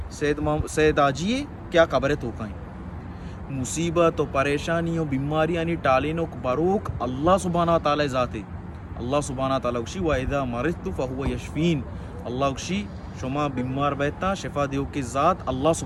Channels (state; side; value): identical; both; correlation 1.00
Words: سید آجیے کیا قبر توکائیں مصیبت و پریشانی و بیماری یعنی ٹالینو بروک اللہ سبحانہ تعالی ذاتے اللہ سبحانہ تعالی اکشی وَإِذَا مَرِضْتُ فَهُوَ يَشْفِينِ. اللہ اکشی شما بیمار بیتا شفا دیو کی ذات اللہ